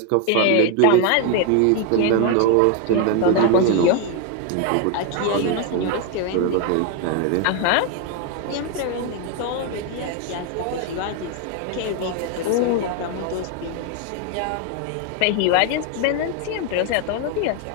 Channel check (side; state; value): both; different; correlation 0.01